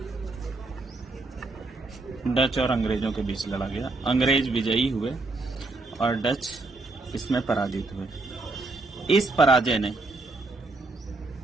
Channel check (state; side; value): quieter; left; 3.3 dB